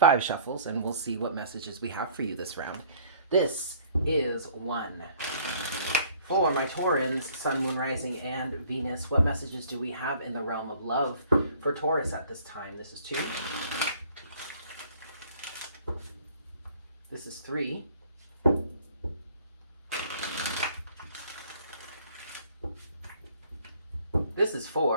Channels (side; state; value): both; inverted; correlation -0.55